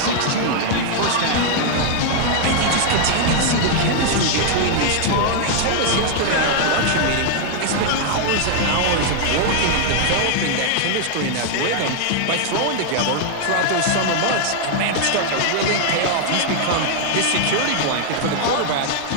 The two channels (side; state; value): both; different; correlation 0.00